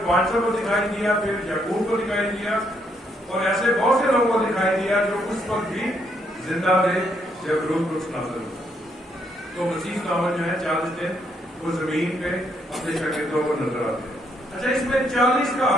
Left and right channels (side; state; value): both; normal; correlation 0.73